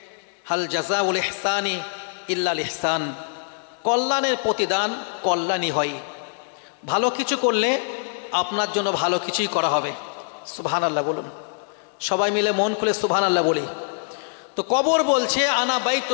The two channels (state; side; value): silent; right; 63 dB below the other